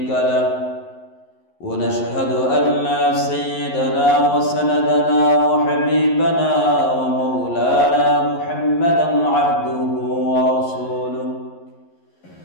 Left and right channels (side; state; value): right; late; 11 ms